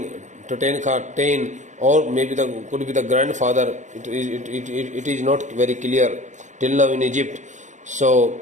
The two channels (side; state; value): left; late; 0.35 ms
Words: Tutankhaten, or maybe could be the grandfather. It is not very clear till now in Egypt. So